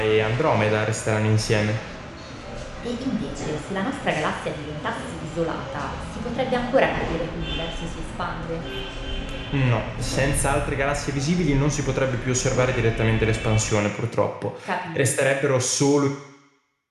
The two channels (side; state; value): both; identical; correlation 1.00